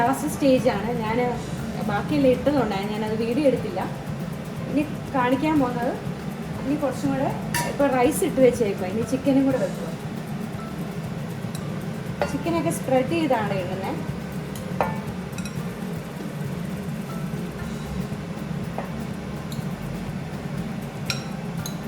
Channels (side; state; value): both; identical; correlation 1.00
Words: സ്റ്റേജാണ്. ഞാൻ ബാക്കിയെല്ലാം ഇട്ടതുകൊണ്ടാണ് ഞാനത് വീഡിയോ എടുത്തില്ല. ഇനി കാണിക്കാൻ പോകുന്നത്, ഇനി കുറച്ചും കൂടെ ഇപ്പോൾ റൈസ് ഇട്ട് വെച്ചേക്കുക. ഇനി ചിക്കനും കൂടെ വെക്കുക. ചിക്കനൊക്കെ സ്പ്രെഡ് ചെയ്താണ് ഇടുന്നത്.